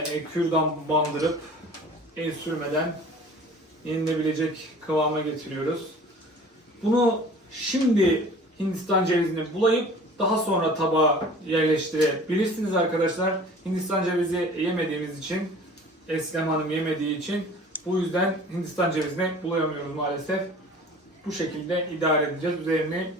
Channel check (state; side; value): normal; both; correlation 0.45